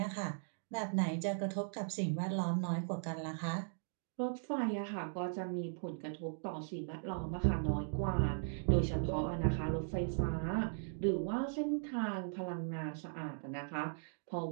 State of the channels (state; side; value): silent; left; digital silence